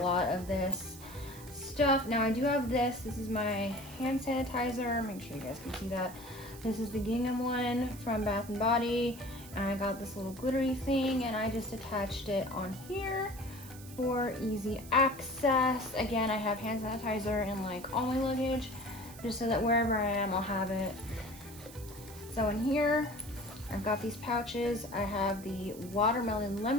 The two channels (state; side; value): noise; right; hiss, 17 dB below the sound